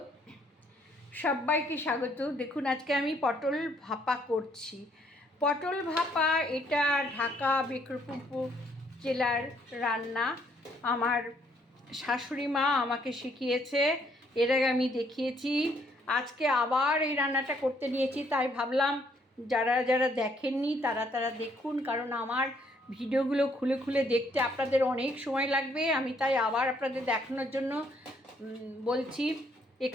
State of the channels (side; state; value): both; normal; correlation 0.67